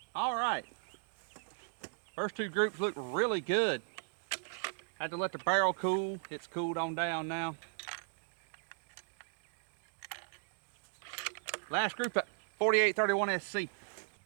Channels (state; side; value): silent; left; digital silence